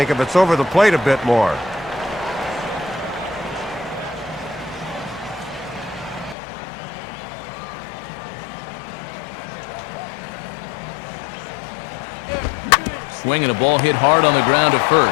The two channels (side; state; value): right; drops out; at 6.4 s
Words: if it's over the plate a bit more. Swinging a ball hit hard on the ground to